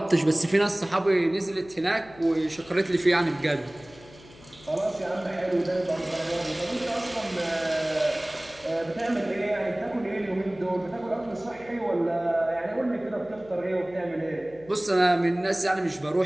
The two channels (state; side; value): noise; left; hum, 22 dB below the sound